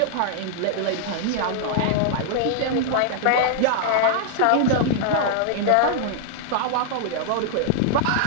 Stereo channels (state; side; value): different; both; correlation -0.01